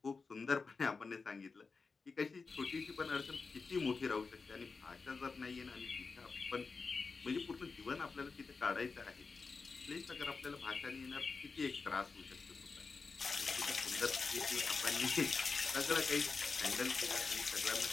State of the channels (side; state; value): right; quieter; 4.5 dB